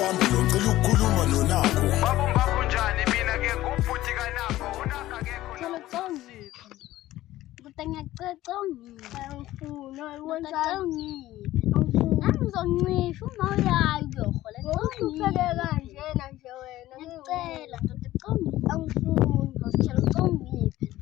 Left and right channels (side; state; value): right; quieter; 15.5 dB